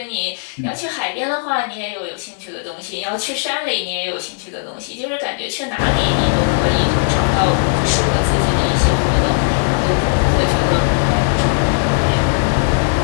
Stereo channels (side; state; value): right; silent; digital silence